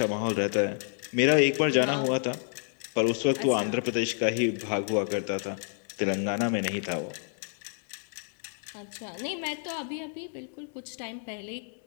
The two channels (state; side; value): silent; right; 58 dB below the other